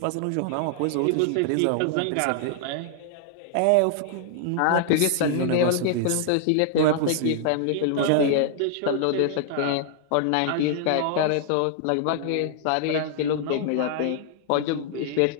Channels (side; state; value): both; different; correlation 0.00